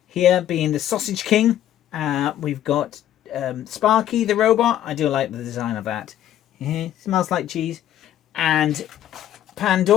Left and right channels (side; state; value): right; quieter; 11.7 dB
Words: here being the Sausage King. We've got Sparky the robot. I do like the design of that. Smells like cheese. And